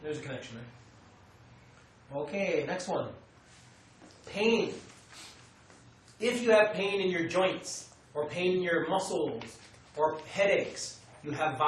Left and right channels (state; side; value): identical; both; correlation 1.00